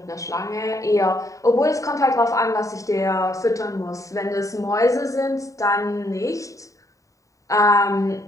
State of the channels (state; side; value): late; right; 0.16 ms